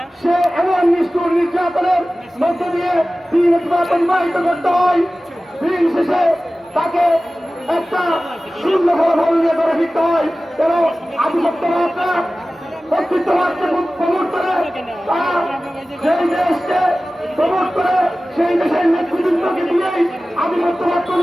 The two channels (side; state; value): both; normal; correlation 0.96